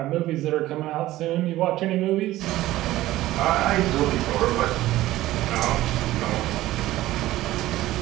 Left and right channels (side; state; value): left; quieter; 15.8 dB